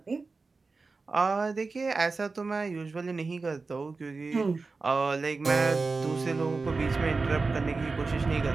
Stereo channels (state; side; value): quieter; left; 4.0 dB